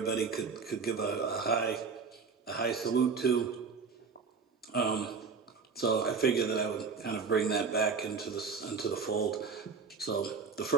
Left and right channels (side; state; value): left; quieter; 5.3 dB